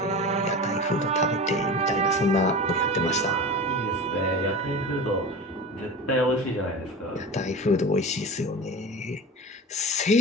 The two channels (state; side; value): normal; both; correlation 0.31